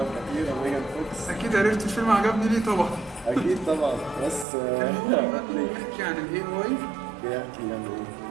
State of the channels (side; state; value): left; drops out; at 4.5 s